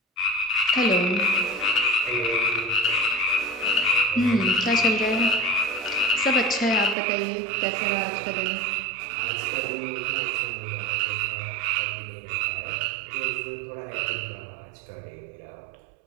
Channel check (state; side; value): drops out; left; at 7.0 s